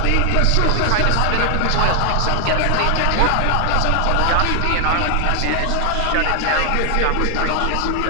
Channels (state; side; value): different; both; correlation 0.00